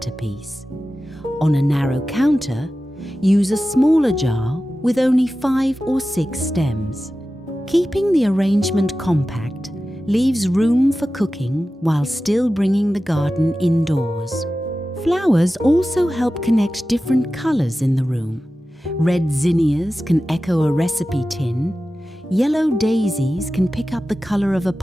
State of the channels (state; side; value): normal; both; correlation 0.94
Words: On a narrow counter, use a smaller jar with only 5 or 6 stems. Keeping the arrangement compact leaves room for cooking while still bringing the garden indoors. Flowers also help connect different colors in the room. Red zinnias can echo a recipe tin, yellow daisies can pick up the color of a